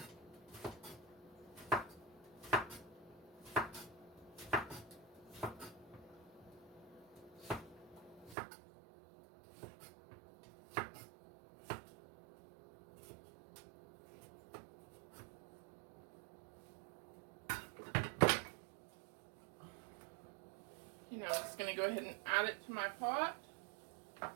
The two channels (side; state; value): left; drops out; at 8.3 s